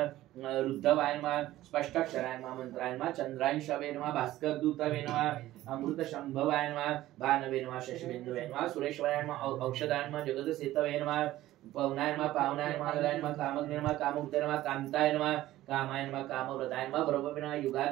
रुद्धवाय नमः स्पष्टाक्षराय नमः मंत्राय नमः चंद्रांशवे नमः भास्कर दूतवे नमः अमृत शंभवाय नमः भानवे नमः शशिबिंदवे नमः सुरेश्वराय नमः औषधाय नमः जगदसेतवे नमः पवनाय नमः पावनाय नमः ललाय नमः कामग्ने नमः कामोक्ते नमः कांताय नमः कामाय नमः कामव्रताय नमः ब्रह्मविनाय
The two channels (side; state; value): left; quieter; 15.3 dB